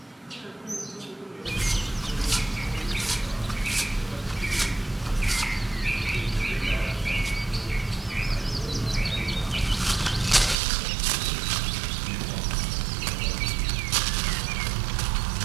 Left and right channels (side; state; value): left; drops out; at 10.6 s